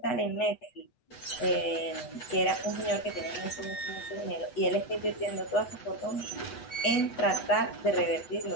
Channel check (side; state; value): right; late; 8.1 ms